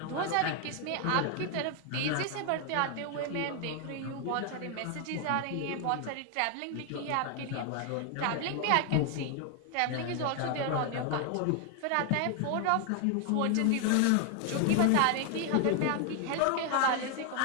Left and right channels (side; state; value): both; different; correlation 0.00